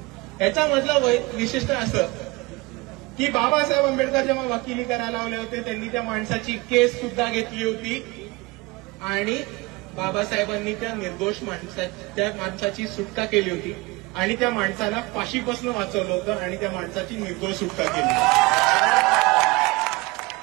याचा मतलब विशिष्ट असं की बाबासाहेब आंबेडकर जेव्हा वकिली करायला आले होते त्यांनी त्या माणसाची केस सुद्धा घेतली होती आणि बाबासाहेबांनी त्या निर्दोष माणसाची सुटका केली होती आणि त्या माणसाला फाशीपासून वाचवलं होतं आणि त्या माणसाची निर्दोष सुटका केली।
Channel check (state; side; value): quieter; left; 23.8 dB